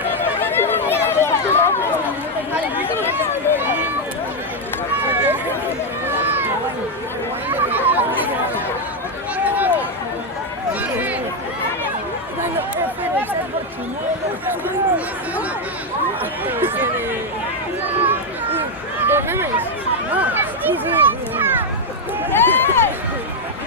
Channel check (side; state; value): both; normal; correlation 0.04